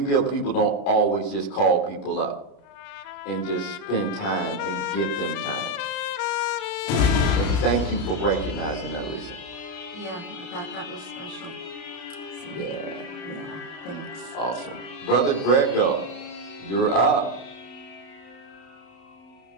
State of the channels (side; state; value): right; late; 31 ms